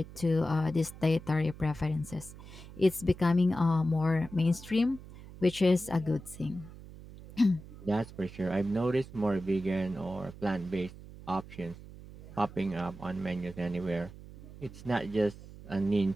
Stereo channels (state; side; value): noise; right; hum, 16 dB below the sound